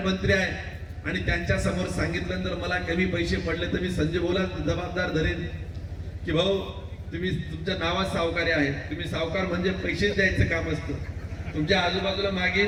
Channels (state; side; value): identical; both; correlation 1.00